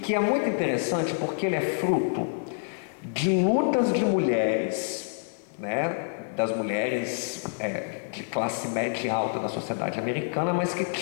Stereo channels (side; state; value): right; silent; digital silence